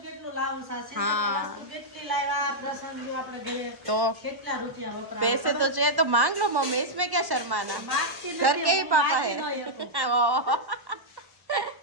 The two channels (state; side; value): late; left; 1.1 ms